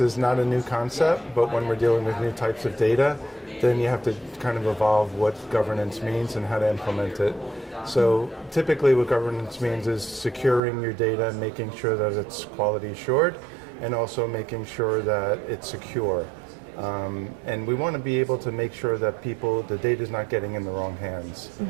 not a new concept, but when we're dealing with new types of data, then you have to kind of evolve what governance means and how to implement it. So typically what governance means is securing your data, making sure that it's quality assured, and also making sure that it's secure. And we want to be able to make sure that the data is not getting in the wrong hands.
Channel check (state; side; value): drops out; left; at 10.6 s